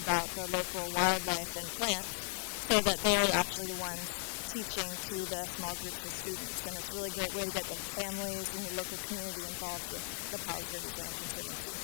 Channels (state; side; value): silent; right; digital silence